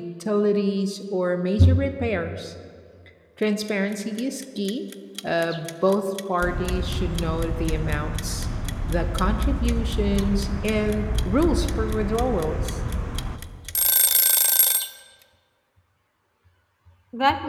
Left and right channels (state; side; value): identical; both; correlation 1.00